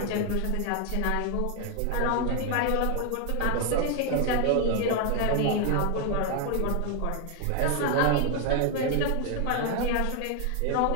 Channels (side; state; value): both; different; correlation 0.01